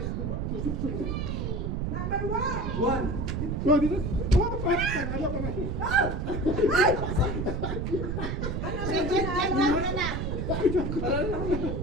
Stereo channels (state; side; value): noise; right; rumble, 1 dB below the sound